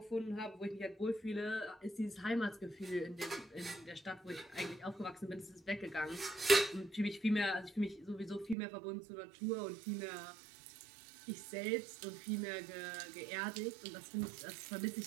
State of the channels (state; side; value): drops out; left; at 8.6 s